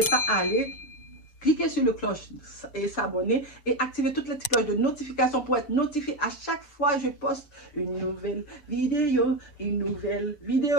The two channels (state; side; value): late; right; 6.7 ms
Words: pas à aller cliquer sur le cloche et s'abonner et activer toutes les petites cloches de notification pour être notifié à chaque fois que je poste une nouvelle vidéo.